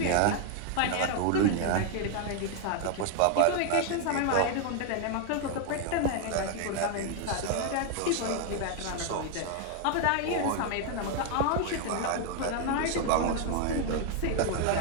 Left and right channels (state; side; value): different; both; correlation 0.00